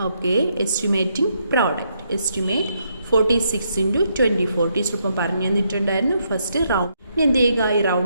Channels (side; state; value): both; inverted; correlation -0.76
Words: Okay, estimating product. Estimate 46 × 24. Teacher ഇപ്പം പറഞ്ഞു തന്നിട്ടുണ്ടായിരുന്നു. First round എന്ത് ചെയ്യുക? ഈ